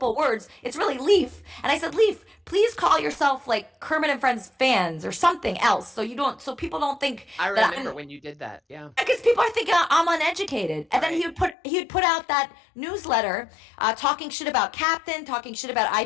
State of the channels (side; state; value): right; drops out; at 11.6 s